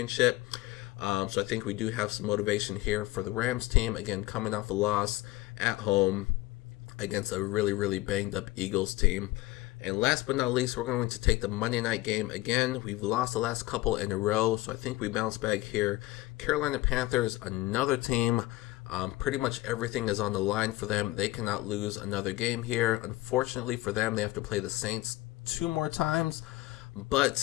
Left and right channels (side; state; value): right; quieter; 18.4 dB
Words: So I think we do have some motivation here for the Rams team, again, coming off a loss at home against a really, really banged up Eagles team. And last but not least, we're going to take the Monday night game again. We've lost the last couple in a row, so I think we bounce back here. Carolina Panthers, another team. Pretty much everything is on the line for them. They cannot lose another game here. Unfortunately for them, they have to play the Saints 2 more times.